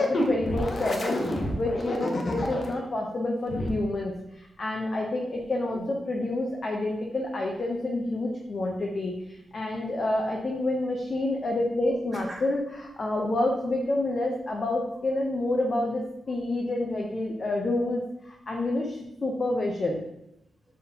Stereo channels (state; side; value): normal; both; correlation 0.88